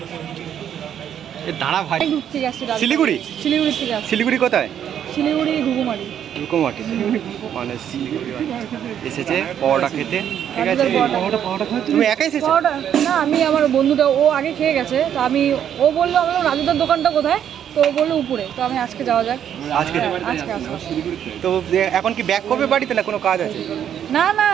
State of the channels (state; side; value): quieter; left; 9.5 dB